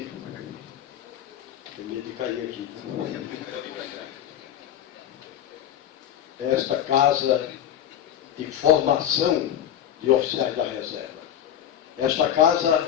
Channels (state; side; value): quieter; right; 10.5 dB